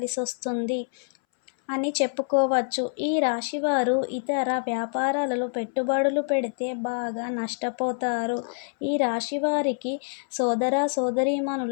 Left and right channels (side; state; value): right; silent; 61 dB below the other